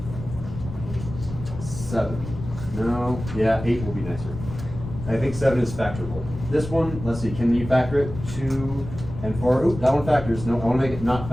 7. No, yeah, 8 will be nicer. I think 7 is factorable. This one, let's see, can you factor it? 2 and 4. Oop, that one factors. No, I want to make it not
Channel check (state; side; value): noise; left; rumble, 10 dB below the sound